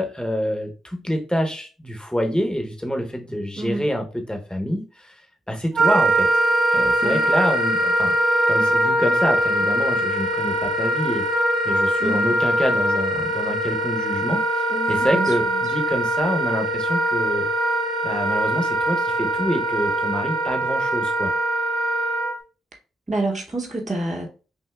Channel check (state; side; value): normal; both; correlation 0.76